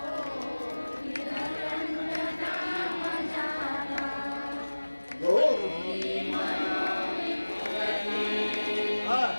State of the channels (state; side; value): inverted; both; correlation -1.00